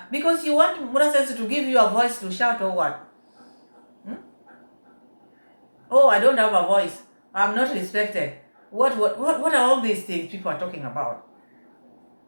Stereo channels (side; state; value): both; inverted; correlation -1.00